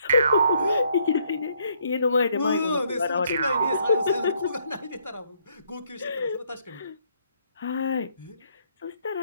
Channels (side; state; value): both; inverted; correlation -0.70